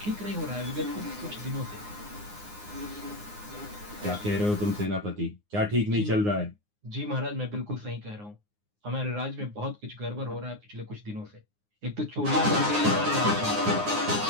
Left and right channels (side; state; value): left; late; 9.6 ms